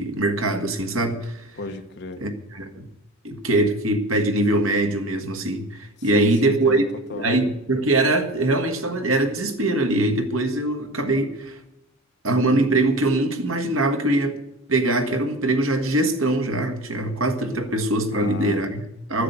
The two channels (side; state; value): both; normal; correlation 0.35